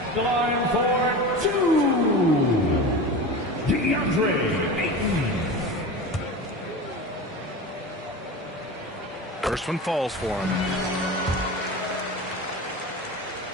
the line for 2, DeAndre Ayton. First one falls for him.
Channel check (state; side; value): normal; both; correlation 0.29